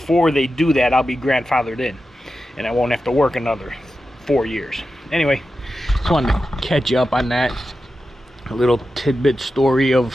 they do that, I'll be grandfathered in, and I won't have to work another 4 years. Anyway, just wanted to catch you up on that. A little tidbit story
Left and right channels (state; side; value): normal; both; correlation 0.91